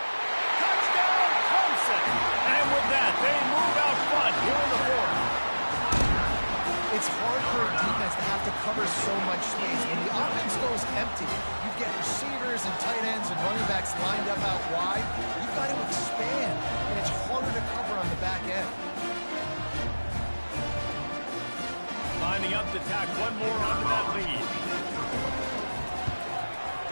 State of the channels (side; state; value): both; inverted; correlation -1.00